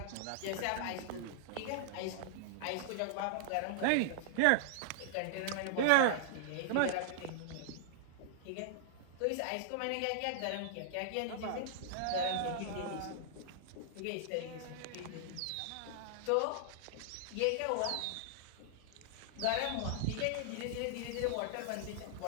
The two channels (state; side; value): different; both; correlation -0.01